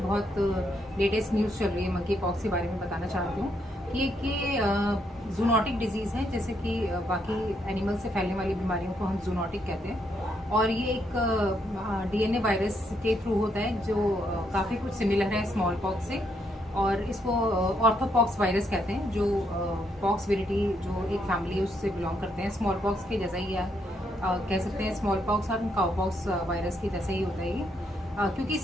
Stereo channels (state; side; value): normal; both; correlation 0.76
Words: लेटेस्ट न्यूज़ चल रही है मंकी पॉक्स के बारे में बताना चाहती हूँ कि जूनोटिक डिजीज़ है, जैसे कि बाकी एनिमल से फैलने वाली बीमारियों को हम जूनोटिक कहते हैं। और ये एक डीएनए वायरस के थ्रू होता है जो काफ़ी कुछ सिमिलर है स्मॉल पॉक्स से। और इसको ऑर्थोपॉक्स वायरस कहते हैं, जो पॉक्स विरिटी जो एक फैमिली है उससे बिलोंग करते हैं। स्मॉल पॉक्स के जैसा ही कह सकते हैं, स्मॉल पॉक्स और काउपॉक्स वायरस के जैसा ही होता है ये। क्योंकि